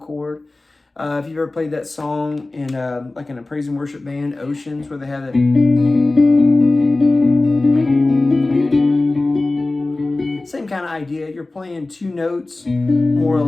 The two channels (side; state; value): right; quieter; 3.0 dB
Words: If you've ever played that song in like in a praise and worship band, Oceans, where they have it. Same kind of idea. You're playing 2 notes, more or